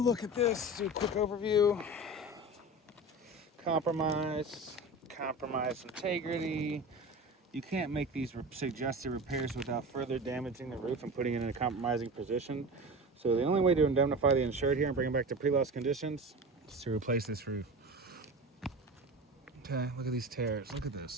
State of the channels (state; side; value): normal; both; correlation 0.31